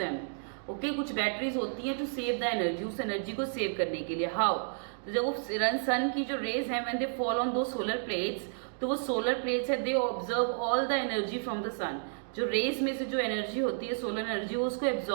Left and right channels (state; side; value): silent; left; digital silence